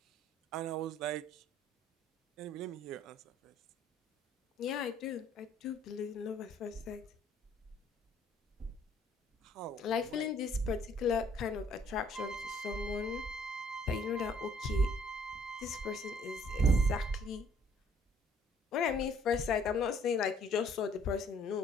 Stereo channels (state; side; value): normal; both; correlation 0.61